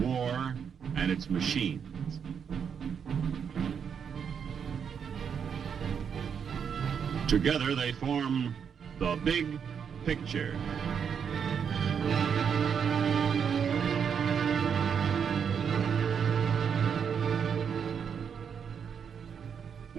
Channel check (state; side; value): quieter; left; 7.2 dB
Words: and its machines. Together they form the big picture.